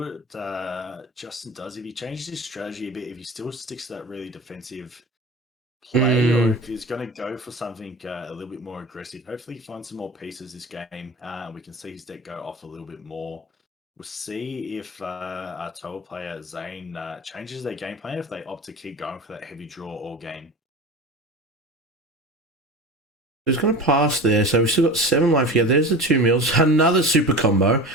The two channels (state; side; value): normal; both; correlation 0.33